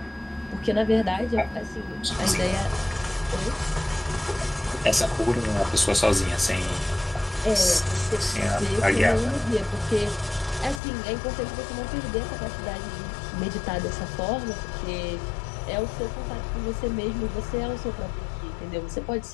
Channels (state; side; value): drops out; right; at 10.8 s